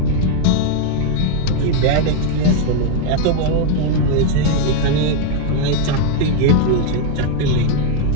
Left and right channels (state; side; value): different; both; correlation 0.01